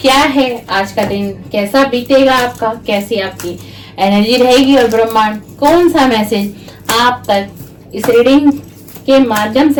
क्या है, आज का दिन कैसा बीतेगा आपका, कैसी आपकी एनर्जी रहेगी और ब्रह्मांड कौन सा मैसेज आप तक इस रीडिंग के माध्यम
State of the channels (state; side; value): identical; both; correlation 1.00